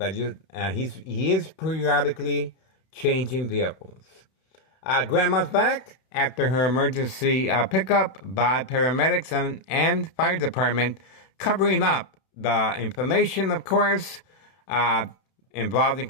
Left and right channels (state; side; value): late; right; 31 ms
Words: is periodically changing vehicles. Grandma's back after her emergency pickup by paramedics and fire department, covering up the information, of course, involved in